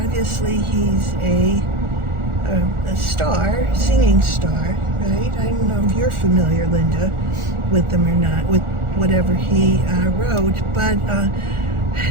he's a star, singing star, right? I don't know if you're familiar, Linda, with them or not, with whatever he wrote, but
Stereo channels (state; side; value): late; left; 1.4 ms